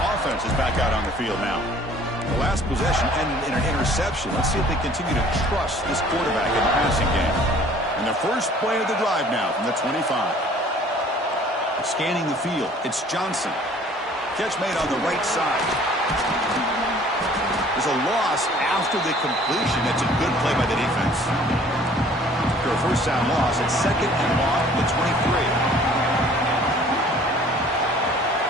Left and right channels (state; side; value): normal; both; correlation 0.53